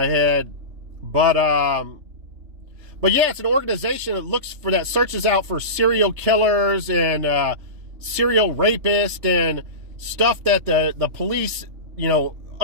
head. But yeah, it's an organization that searches out for serial killers and serial rapists and stuff that the police, you know,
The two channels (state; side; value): late; left; 3.4 ms